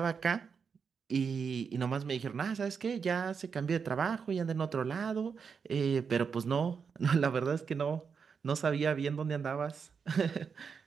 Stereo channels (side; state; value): left; quieter; 6.0 dB